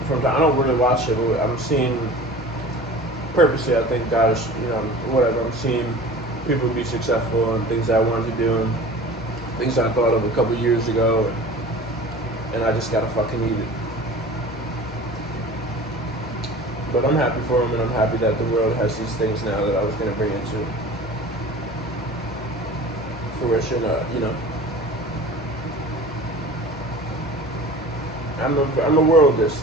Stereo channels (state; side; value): normal; both; correlation 0.40